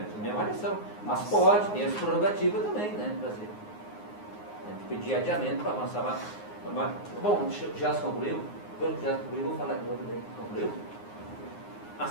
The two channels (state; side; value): late; right; 9.6 ms